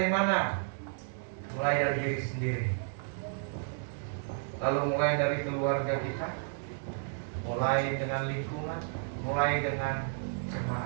mana? Mulai dari diri sendiri. Lalu mulai dari keluarga kita, mulai dengan lingkungan, mulai dengan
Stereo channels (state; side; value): silent; left; digital silence